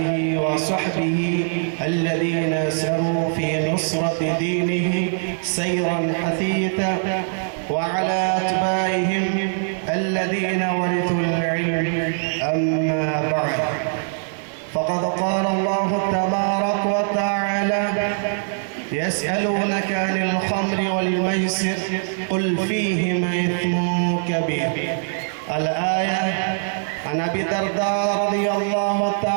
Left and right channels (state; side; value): silent; left; digital silence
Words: وصحبه الذين سروا في نصرة دينه سيرا حثيثا، وعلى أتباعهم الذين ورثوا العلم. أما بعد، فقد قال الله تبارك وتعالى: يسألونك عن الخمر والميسر قل فيهما إثم كبير. الآية. عن أبي الدرداء رضي الله